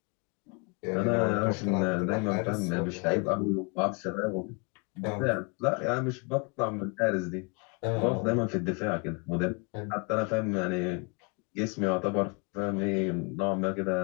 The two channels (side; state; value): right; quieter; 32.4 dB